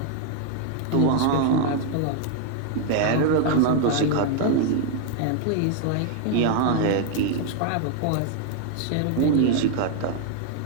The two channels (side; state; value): both; different; correlation 0.00